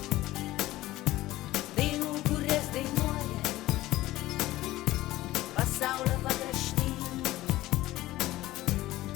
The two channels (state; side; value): quieter; right; 16.8 dB